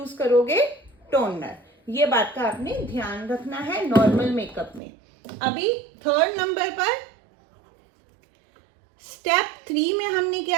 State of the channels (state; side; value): drops out; left; at 4.8 s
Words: करोगे टोनर। ये बात का आपने ध्यान रखना है नॉर्मल मेकअप में। अभी थर्ड नंबर पर स्टेप 3 में हमने